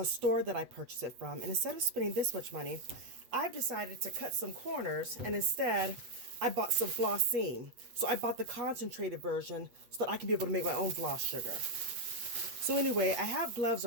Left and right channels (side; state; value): left; late; 8.1 ms